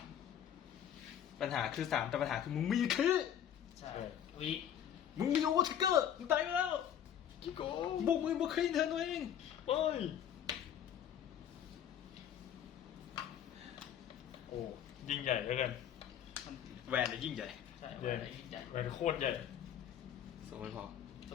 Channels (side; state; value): right; quieter; 9.7 dB